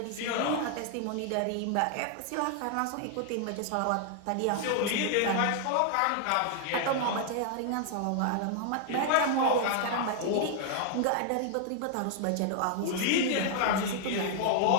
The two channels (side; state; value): both; different; correlation 0.00